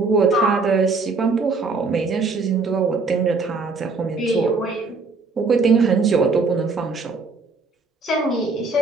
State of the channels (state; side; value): quieter; left; 4.0 dB